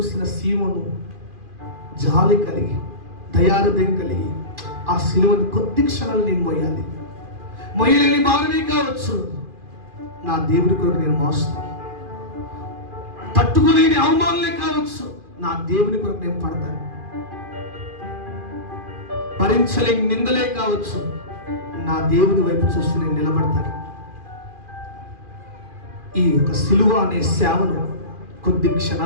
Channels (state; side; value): late; left; 2.4 ms